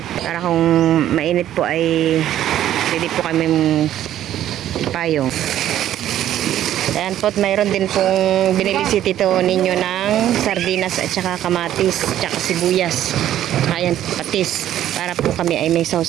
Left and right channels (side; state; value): left; quieter; 12.0 dB